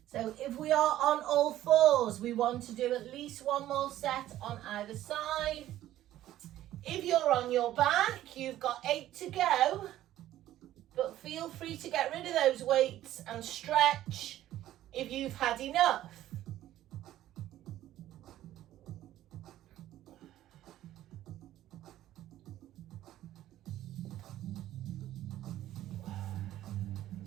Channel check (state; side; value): quieter; left; 13.5 dB